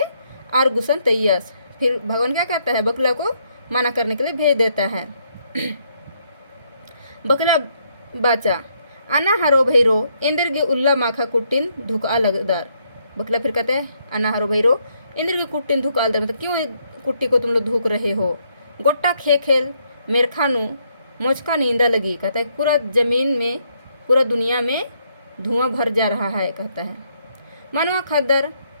आर गुसन तैयस, फिर भगवान क्या कहता है बकला को मना करने के लिए भेज देता है। बकला बाचा अना हरो भैरो इंद्र के उल्ला माखा कुटिन धुका लगदार। बकला फिर कहता है अना हरो भैरो इंद्र के कुटिन धुका लगदार, मतलब क्यों कुट्टी को तुम लोग धुक रहे हो। गोट्टा खेल मेरखानु मोचका नींदा लगी, कहता है पूरा जमीन में पूरा दुनिया में धुआं भर जा रहा है कहता है। मनवा खद्दर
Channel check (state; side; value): inverted; both; correlation -0.73